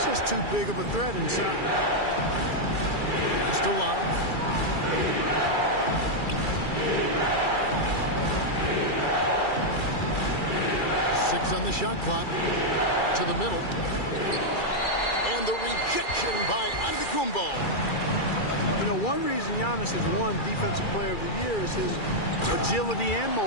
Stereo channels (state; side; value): late; right; 2.3 ms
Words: just too big of a threat inside. Just to Love. Six on the shot clock. To the middle. And the rejection by Antetokounmpo. You know, one reason Giannis has won Defensive Player of the Year is his agility and